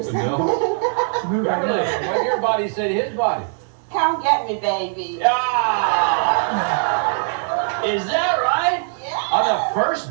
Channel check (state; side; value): silent; left; 58 dB below the other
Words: something. Beverly, what did your body say to his body? Come get me, baby. Ah! Is that right? Yeah. On the